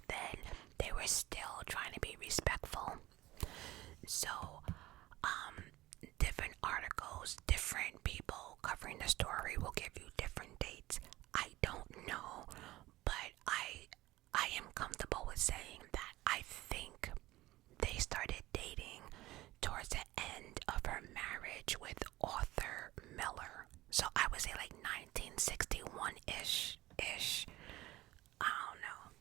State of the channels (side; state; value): left; quieter; 17.4 dB